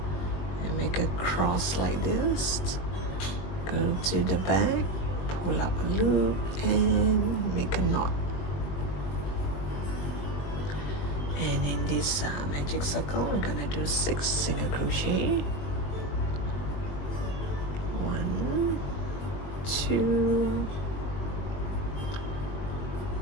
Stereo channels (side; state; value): right; late; 20 ms